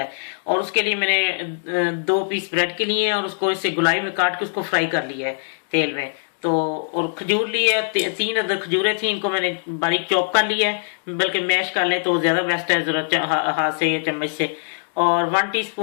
और उसके लिए मैंने 2 पीस ब्रेड के लिए और उसको इससे गुलाई में काट के उसको फ्राई कर लिया है तेल में। तो और खजूर ली है, 3 अदर खजूरें थी, इनको मैंने बारीक चॉप कर लिया है, बल्कि मैश कर लें तो ज़्यादा बेस्ट है, ज़रा हाथ से या चम्मच से। और 1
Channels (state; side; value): silent; right; digital silence